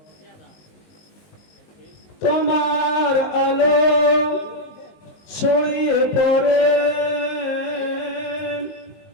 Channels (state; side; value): late; right; 19 ms